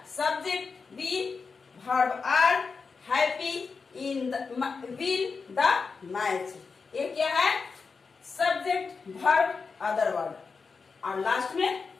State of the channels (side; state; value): right; quieter; 4.9 dB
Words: subject, we verb are, happy in win the match. ये क्या है? सब्जेक्ट वर्ब अदर वर्ड और लास्ट में